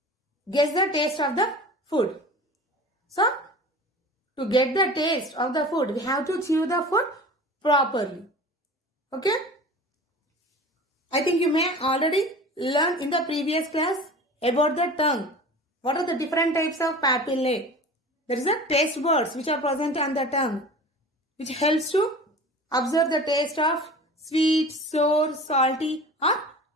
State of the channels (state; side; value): normal; both; correlation 0.38